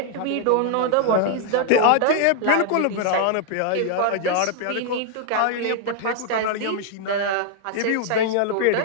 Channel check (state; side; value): different; both; correlation 0.00